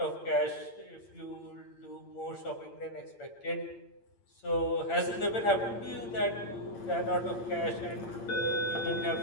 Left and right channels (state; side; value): late; right; 8.7 ms